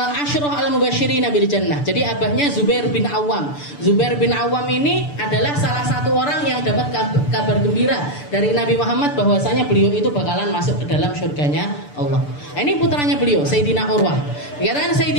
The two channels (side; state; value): right; late; 6.8 ms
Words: Asyrah al-Mubasysyirin bil Jannah. Jadi abahnya Zubair bin Awam. Zubair bin Awam ini adalah salah satu orang yang dapat kabar gembira dari Nabi Muhammad bahwasanya beliau itu bakalan masuk ke dalam surganya Allah. Ini putranya beliau, Sayyidina Urwah. Dikatakan